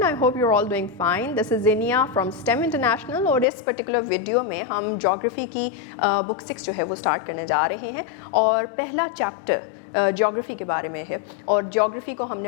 I hope you're all doing fine. This is Zinia from STEM International और इस particular video में हम geography की book 6 जो है वो स्टार्ट करने जा रहे हैं और पहला चैप्टर ज्योग्राफी के बारे में है और ज्योग्राफी को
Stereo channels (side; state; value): right; drops out; at 3.5 s